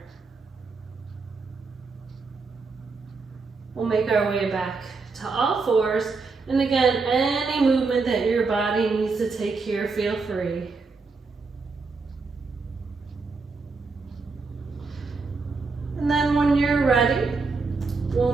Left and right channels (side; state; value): left; quieter; 4.2 dB